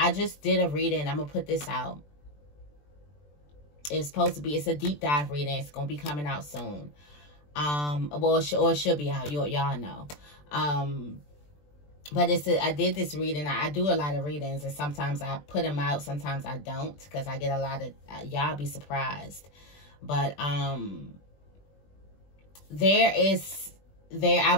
just did a reading. I'm gonna put this out. It's supposed to be, it's a deep dive reading. It's gonna be coming out soon. Well, it should be out. Y'all know. But I did this reading. I do a lot of readings, and sometimes I put them out, sometimes I don't, because I get a lot of, y'all be surprised. But I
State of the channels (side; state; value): right; late; 20 ms